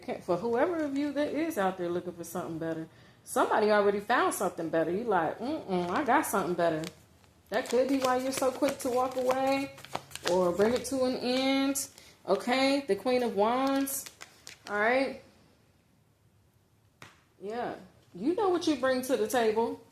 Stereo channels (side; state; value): both; identical; correlation 1.00